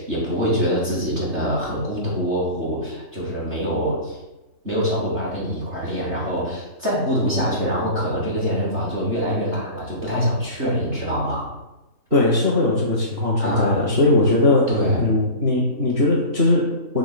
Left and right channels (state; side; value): late; left; 3.3 ms